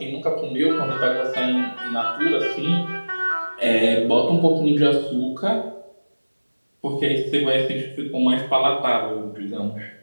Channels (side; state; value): both; inverted; correlation -1.00